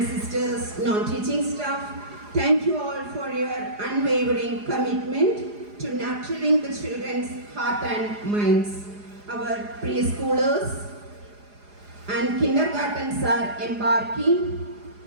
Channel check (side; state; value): left; late; 4.8 ms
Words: sisters, non-teaching staff. Thank you all for your unwavering commitment to nurturing the children's heart and minds. Our preschoolers and kindergartens are embarking